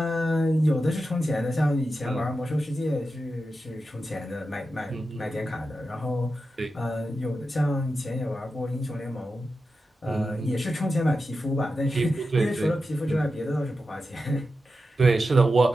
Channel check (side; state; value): both; normal; correlation 0.90